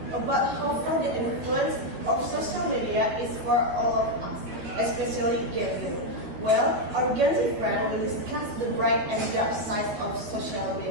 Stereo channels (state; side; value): late; left; 12 ms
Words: about how far the influence of social media is for all of us, especially Gen Z? Well, our Gen Z friend will discuss the bright and dark side of social